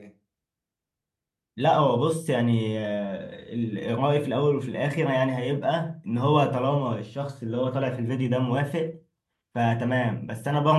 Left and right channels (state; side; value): identical; both; correlation 1.00